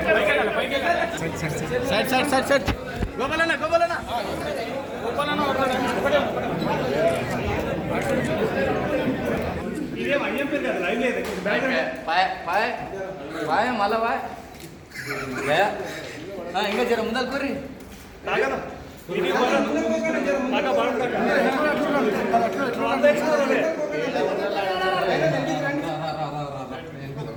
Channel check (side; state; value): both; identical; correlation 1.00